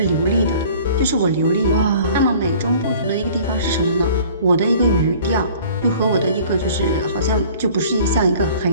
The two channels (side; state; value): both; inverted; correlation -0.49